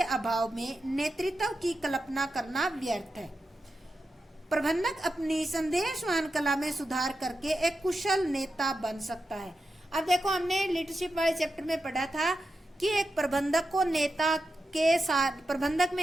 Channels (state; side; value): normal; both; correlation 0.89